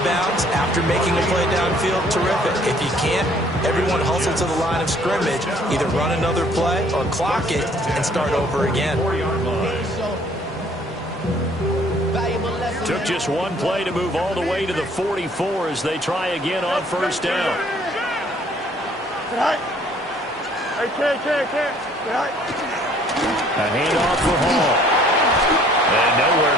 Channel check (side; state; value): both; normal; correlation 0.59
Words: bounds after making a play downfield, terrific. If you can't, everyone hustle to the line of scrimmage, either run another play or clock it and start over again. Took just one play to move all the way to the 44 as they try again on 1st down. A handoff for Hall. And nowhere